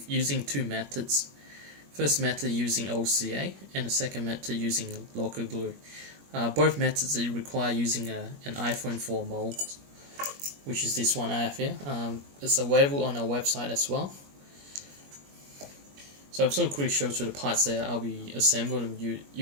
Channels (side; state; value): left; late; 21 ms